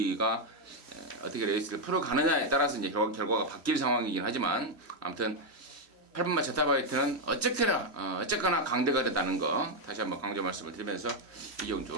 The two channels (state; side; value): late; right; 3.1 ms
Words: 어떻게 레이스를 풀어가느냐에 따라서 이제 결과가 바뀔 상황이긴 하지만 아무튼 8번마 제타바이트는 어쨌거나 강대가 됐다는 거 다시 한번 강조 말씀을 드리면서 이 경주